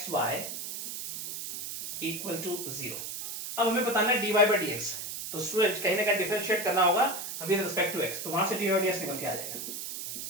इक्वल टू 0। अब हमें बताना है dy बाय dx, तो स्टूडेंट कहीं ना कहीं डिफरेंशिएट करना होगा विद रिस्पेक्ट टू x, तो वहां से dy बाय dx निकल के आ जाएगा,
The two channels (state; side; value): noise; right; hiss, 6 dB below the sound